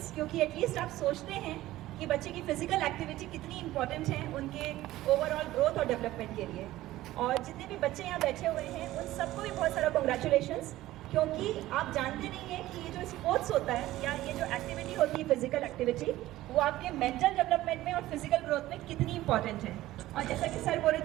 क्योंकि एटलीस्ट आप सोचते हैं कि बच्चे की फिजिकल एक्टिविटी कितनी इंपॉर्टेंट है उनके ओवरऑल ग्रोथ और डेवलपमेंट के लिए। और जितने भी बच्चे यहाँ बैठे हुए हैं उन सबको भी बहुत सारा कंग्रेचुलेशंस, क्योंकि आप जानते नहीं हैं कि ये जो स्पोर्ट्स होता है या ये जो एक्टिविटी होती है फिजिकल एक्टिविटी, वो आपके मेंटल डेवलपमेंट में और फिजिकल ग्रोथ में कितनी इंपॉर्टेंट है। और जैसा कि सर बोल रहे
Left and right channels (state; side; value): quieter; left; 15.9 dB